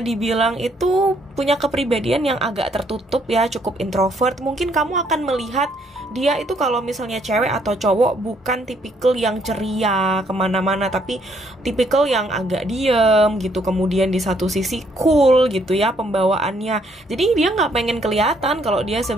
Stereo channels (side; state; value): both; normal; correlation 0.68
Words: dibilang itu punya kepribadian yang agak tertutup ya, cukup introvert. Mungkin kamu akan melihat dia itu kalau misalnya cewek atau cowok bukan tipikal yang ceria kemana-mana, tapi tipikal yang agak diem gitu. Kemudian di satu sisi cool gitu ya pembawaannya. Jadi dia nggak pengen kelihatan kalau dia